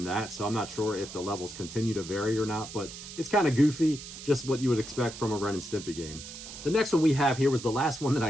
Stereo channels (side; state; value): right; noise; hiss, 12 dB below the sound